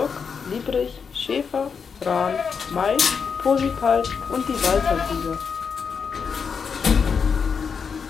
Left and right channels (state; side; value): quieter; right; 6.1 dB